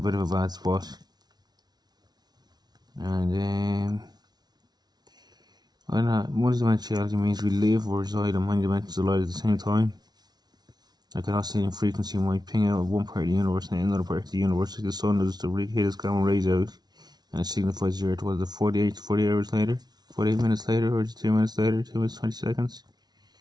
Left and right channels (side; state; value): left; late; 0.19 ms